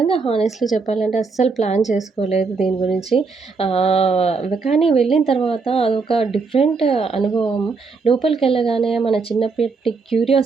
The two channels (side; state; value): left; quieter; 4.5 dB